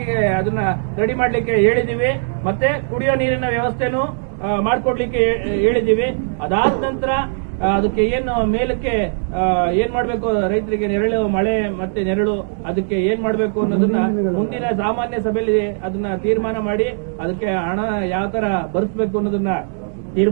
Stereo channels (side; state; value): left; silent; digital silence